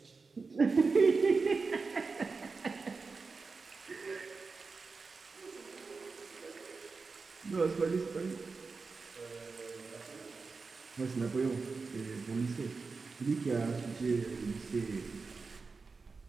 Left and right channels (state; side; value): quieter; left; 4.4 dB